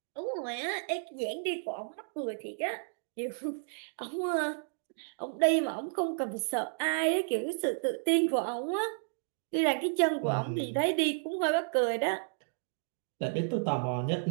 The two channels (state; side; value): silent; left; digital silence